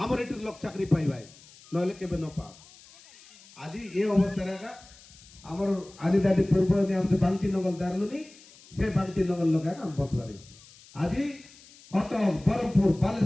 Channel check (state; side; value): noise; left; hiss, 23 dB below the sound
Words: এটির লোক চাকরি পাইবাই নইলে কেবে ন পা আজি এই অবস্থা রাখা আমার আদি দাদি পূর্ব নিয়ম যে বান্তি নগল দারলুনি সে বান্তি নগল লগা আমি বদলারি আজি কত বরমপুর